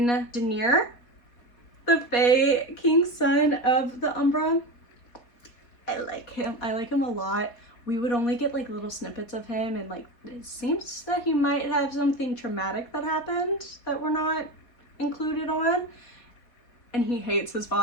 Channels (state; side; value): late; right; 4.2 ms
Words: Daenerys, the Fae King's son of the Umbra, I like him. I like him a lot. We would only get like little snippets of him, and like it seems that he might have something traumatic that happened that we're not included on. And he hates his